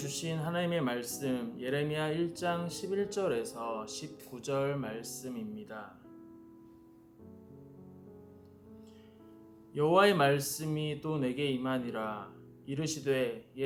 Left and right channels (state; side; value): identical; both; correlation 1.00